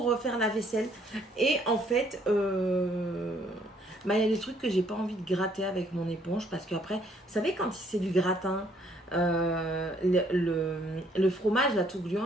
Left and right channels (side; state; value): both; normal; correlation 0.65